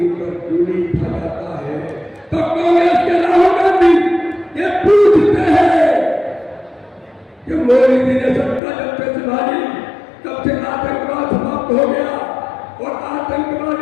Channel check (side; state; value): right; drops out; at 8.6 s